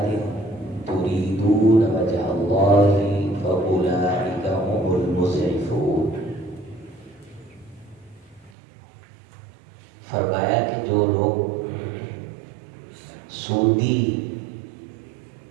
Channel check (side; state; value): left; drops out; at 8.5 s